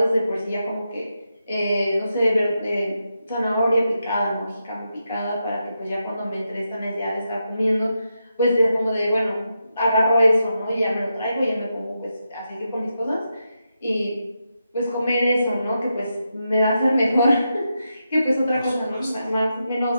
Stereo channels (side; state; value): both; inverted; correlation -0.86